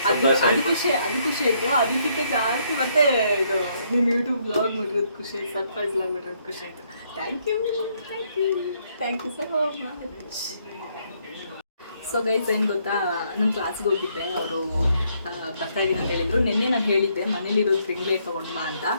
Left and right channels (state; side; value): inverted; both; correlation -0.71